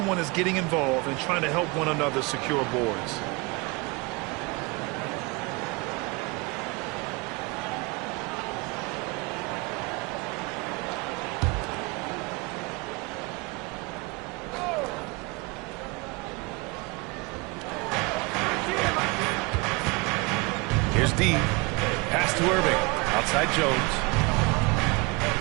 is getting involved and trying to help one another secure boards. D. Pass to Irving. Outside Jones.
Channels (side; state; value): left; quieter; 26.8 dB